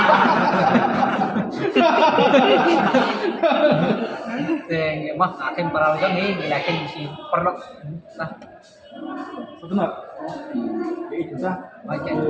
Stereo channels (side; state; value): both; identical; correlation 1.00